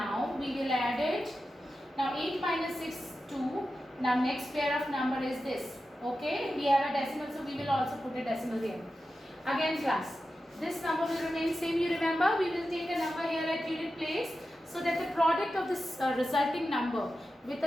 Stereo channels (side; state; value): both; normal; correlation 0.92